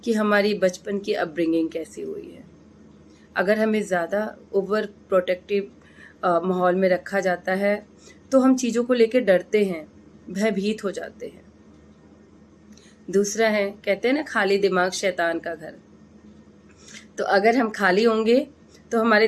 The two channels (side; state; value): both; identical; correlation 1.00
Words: कि हमारी बचपन की अपब्रिंगिंग कैसी हुई है। अगर हमें ज़्यादा ओवर प्रोटेक्टिव माहौल में रखा जाता है तो हम चीज़ों को लेकर डरते हैं, भयभीत हो जाते हैं। दूसरा है, कहते हैं ना खाली दिमाग शैतान का घर। तो अगर हम खाली होंगे तो हमारे